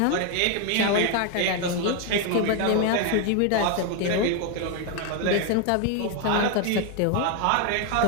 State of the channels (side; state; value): both; different; correlation 0.01